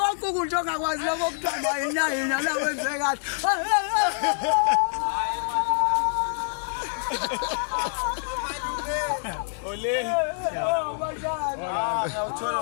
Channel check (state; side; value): silent; right; digital silence